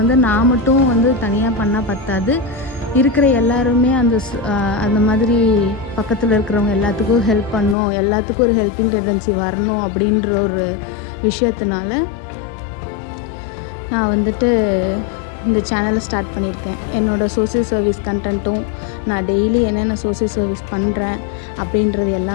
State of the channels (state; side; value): drops out; right; at 7.8 s